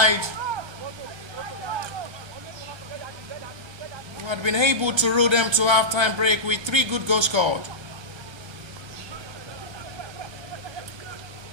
who had been able to roll them to halftime break with 3 good goals scored.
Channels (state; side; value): late; left; 1.3 ms